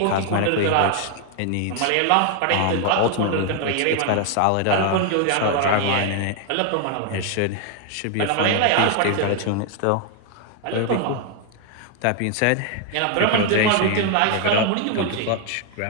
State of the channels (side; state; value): both; different; correlation 0.00